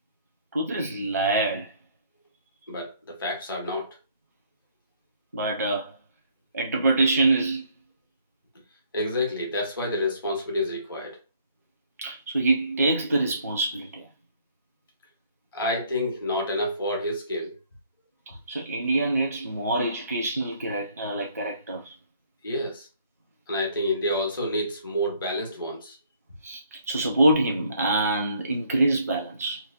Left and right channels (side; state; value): both; inverted; correlation -0.64